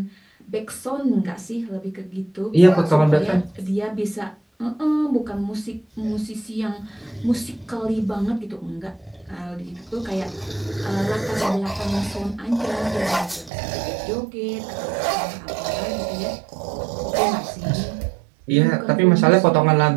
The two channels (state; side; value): drops out; left; at 13.5 s